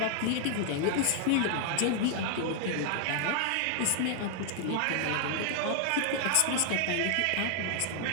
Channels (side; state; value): both; different; correlation 0.00